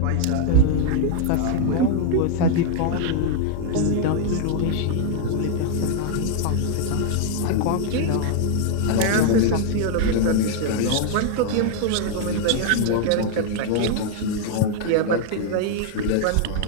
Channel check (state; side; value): different; both; correlation 0.00